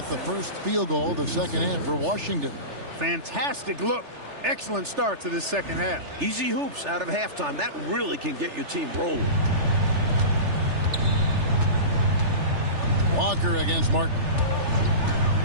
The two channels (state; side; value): late; left; 3.4 ms